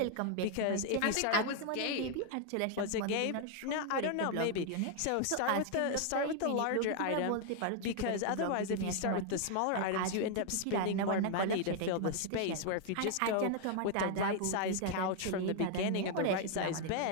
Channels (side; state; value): both; different; correlation 0.00